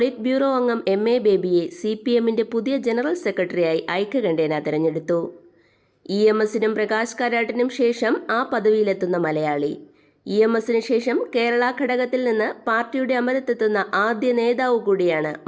ബ്യൂറോ അംഗം MA ബേബിയെ CPMന്റെ പുതിയ ജനറൽ സെക്രട്ടറിയായി ഐക്യകണ്ഠേന തെരഞ്ഞെടുത്തു. EMSനും പ്രകാശ് കാരാട്ടിനും ശേഷം ആ പദവിയിലെത്തുന്ന മലയാളി. EMSന് ശേഷം കേരള ഘടകത്തിൽ നിന്ന് പാർട്ടിയുടെ അമരത്തെത്തുന്ന ആദ്യ നേതാവ് കൂടിയാണ്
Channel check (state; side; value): identical; both; correlation 1.00